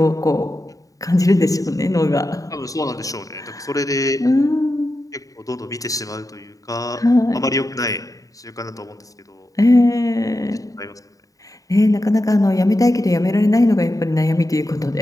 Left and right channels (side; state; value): right; late; 0.16 ms